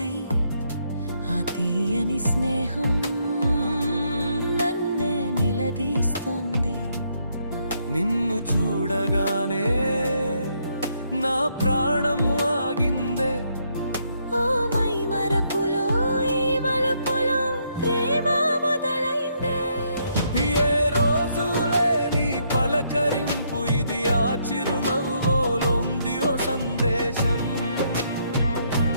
ఆ తీయని స్నేహం నన్నే నిలదీస్తోంది. నిన్ను చూడగానే నా ప్రాణం ఆగిందే. ఓ మై మరపులో ఈ మలుపులో ప్రేమ మొదలైందే. ఏ రోజు లేని పలకరింపు ఇది, ఆ చిరునవ్వులోంది ఓ సందేశం.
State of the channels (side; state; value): both; inverted; correlation -0.73